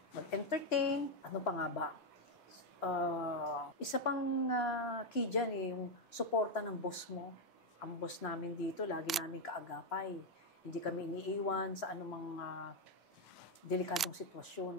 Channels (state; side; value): normal; both; correlation 0.04